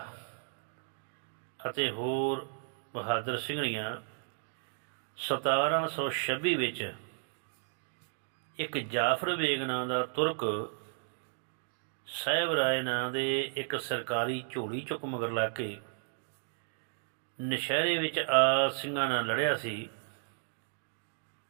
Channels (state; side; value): silent; left; digital silence